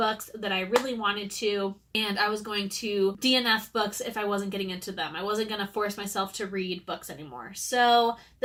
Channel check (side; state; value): both; identical; correlation 1.00